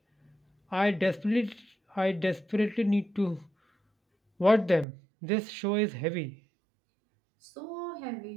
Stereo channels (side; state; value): left; drops out; at 4.9 s